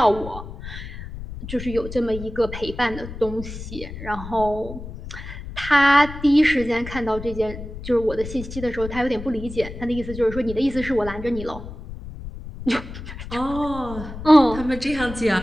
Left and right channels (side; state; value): left; noise; rumble, 11 dB below the sound